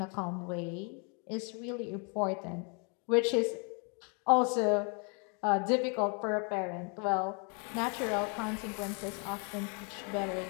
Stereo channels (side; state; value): right; quieter; 36.2 dB